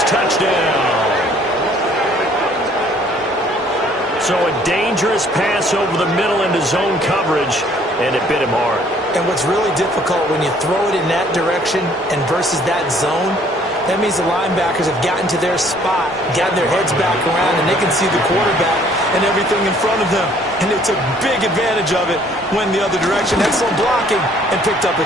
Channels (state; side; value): normal; both; correlation 0.59